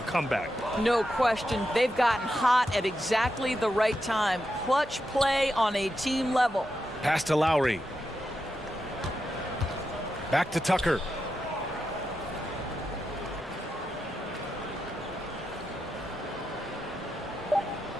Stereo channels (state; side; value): normal; both; correlation 0.87